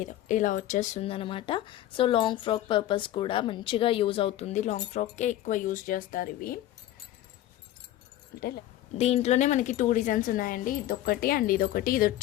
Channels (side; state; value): right; quieter; 13.6 dB